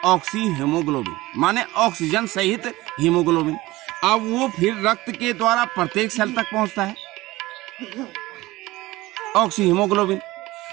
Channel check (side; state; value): left; quieter; 19.0 dB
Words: ऑक्सी हीमोग्लोबिन, माने ऑक्सीजन सहित हीमोग्लोबिन। अब वो फिर रक्त के द्वारा प्रत्येक सेल तक पहुंचता है ऑक्सी हीमोग्लोबिन।